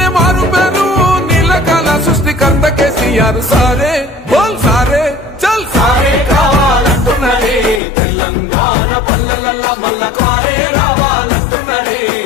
మారు పేరు, నీళ్ళకాల సృష్టికర్త కేసీఆర్. సారే బోల్ సారే చల్ సారే కావాలంటున్నదే తెలంగాణ పల్లెలల్లా, మల్ల కారే రావాలంటున్నదే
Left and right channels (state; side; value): drops out; right; at 7.8 s